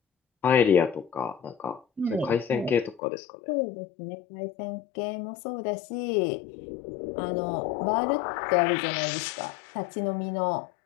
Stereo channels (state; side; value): drops out; right; at 3.0 s